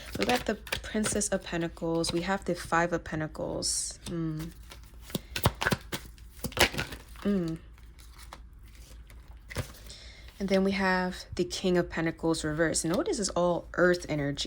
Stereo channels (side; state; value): both; identical; correlation 1.00